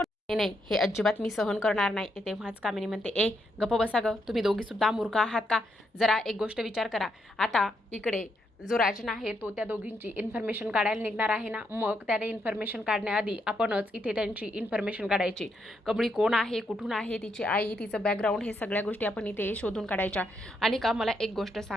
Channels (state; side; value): normal; both; correlation 0.79